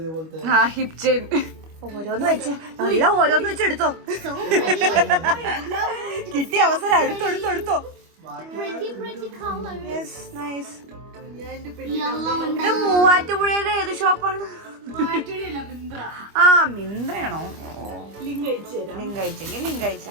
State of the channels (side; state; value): left; late; 25 ms